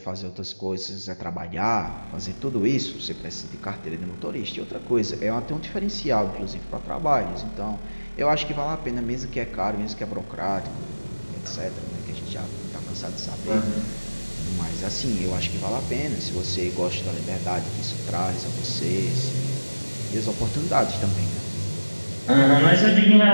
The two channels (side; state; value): both; inverted; correlation -1.00